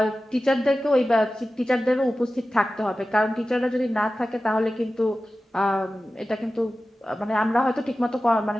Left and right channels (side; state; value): both; normal; correlation 0.95